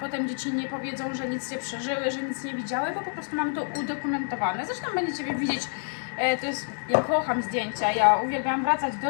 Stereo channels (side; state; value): right; silent; 60 dB below the other